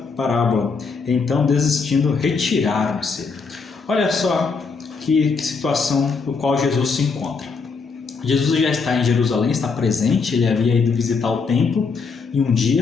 Então, desistindo, retiraram-se. Olha só que situação no qual Jesus se encontra. Jesus já está em Jerusalém, está presente, ele havia ido visitar o templo em um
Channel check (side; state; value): right; quieter; 4.9 dB